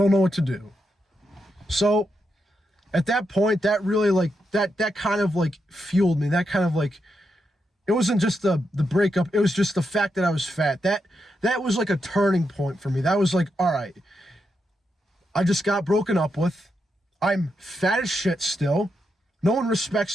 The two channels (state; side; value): normal; both; correlation 0.84